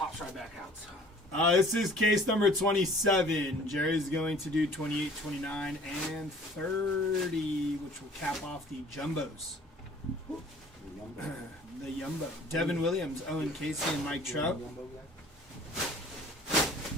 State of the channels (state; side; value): normal; both; correlation 0.50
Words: right back out. This is case number 27. Jerry's going to do 28, 29, and 30, which will cap off the jumbos. The Yumbo. Devin Williams, Owen Casey, and Mike Trout.